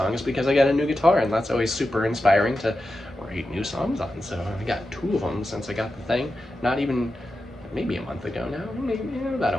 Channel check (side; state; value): both; normal; correlation 0.91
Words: because I got a new guitar, and that's always super inspiring to write new songs on, so I got two of them since I got the thing. Not even, maybe a month ago now, maybe about a